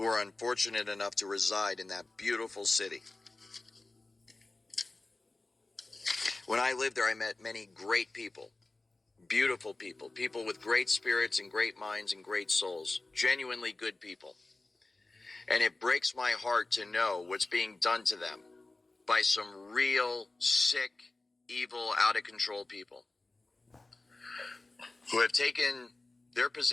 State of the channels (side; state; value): right; quieter; 3.2 dB